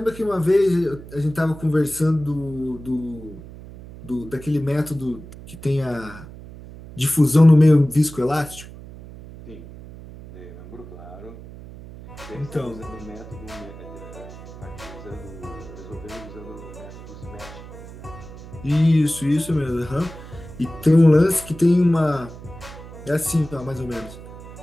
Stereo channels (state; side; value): noise; right; hum, 15 dB below the sound